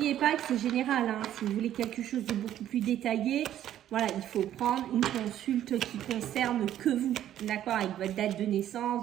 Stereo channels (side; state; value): left; quieter; 11.6 dB